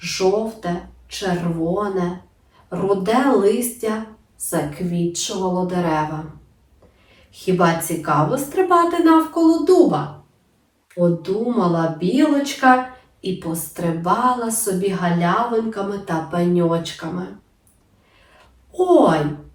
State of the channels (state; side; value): identical; both; correlation 1.00